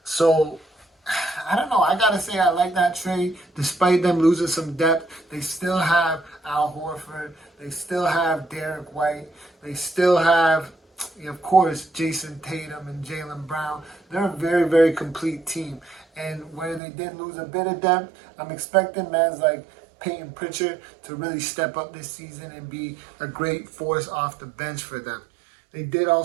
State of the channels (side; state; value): left; drops out; at 16.8 s